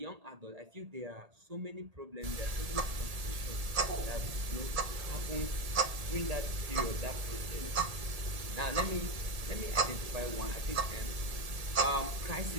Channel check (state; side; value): late; left; 1.8 ms